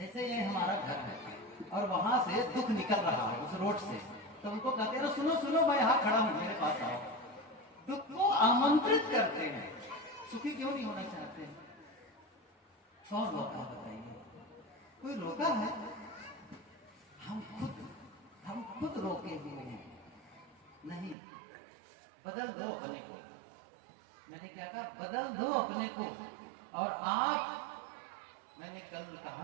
ये हमारा घर है और वहां से दुख निकल रहा है उस रोड से, तो उनको कहते हैं सुनो सुनो, मैं यहाँ खड़ा हूँ, मेरे पास आओ। दुख को आमंत्रित करते हैं। सुखी क्यों नहीं होना चाहते हैं? कौन रोका बताइए? कोई रोका है? हम खुद रोके हुए हैं। नहीं, बदल दो अपने को। मैंने क्या कहा? बदल दो अपने को। और आप, मैंने कल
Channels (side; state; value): left; drops out; at 21.2 s